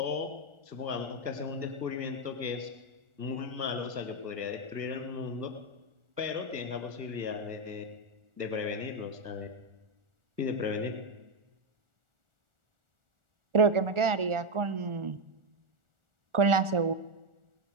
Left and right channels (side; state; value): left; late; 1.4 ms